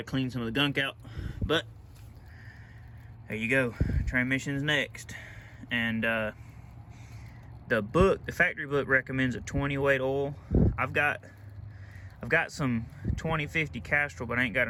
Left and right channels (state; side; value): identical; both; correlation 1.00